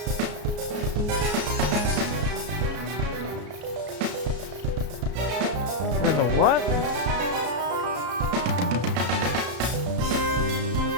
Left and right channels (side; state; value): left; late; 34 ms